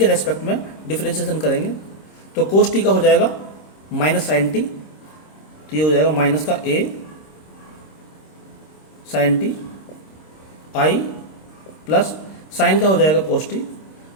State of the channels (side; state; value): right; late; 26 ms